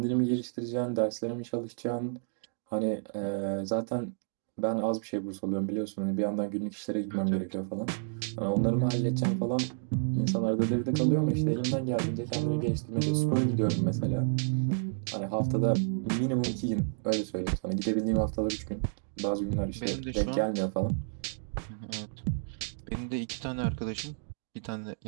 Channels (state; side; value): silent; left; digital silence